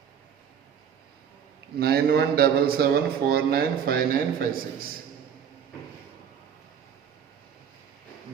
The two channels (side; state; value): left; quieter; 8.0 dB